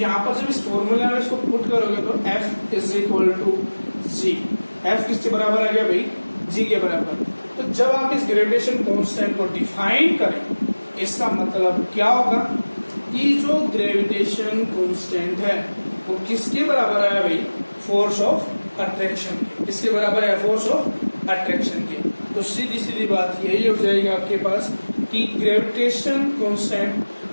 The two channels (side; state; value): both; inverted; correlation -1.00